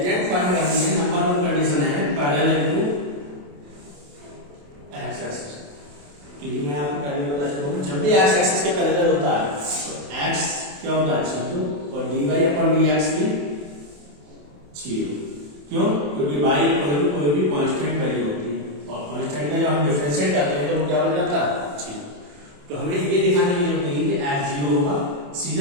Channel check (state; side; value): late; left; 28 ms